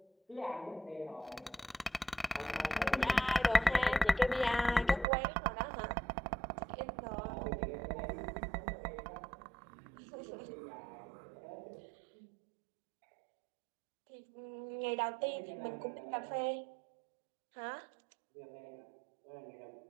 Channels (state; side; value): drops out; left; at 5.1 s